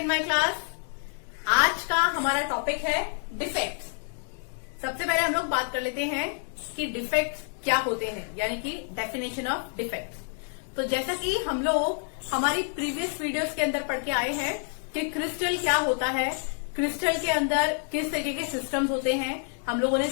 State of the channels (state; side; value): silent; right; 59 dB below the other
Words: my class. आज का हमारा टॉपिक है डिफेक्ट्स। सबसे पहले हम लोग बात कर लेते हैं कि डिफेक्ट्स क्या होते हैं, यानी कि डेफिनेशन ऑफ डिफेक्ट्स। तो जैसा कि हम लोग हमारी प्रीवियस वीडियोस के अंदर पढ़ के आए हैं कि क्रिस्टल क्या होता है, क्रिस्टल के अंदर किस तरीके के सिस्टम्स होते हैं। हम लोगों ने